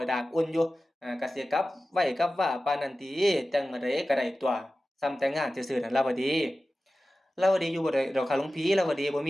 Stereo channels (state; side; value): normal; both; correlation 0.95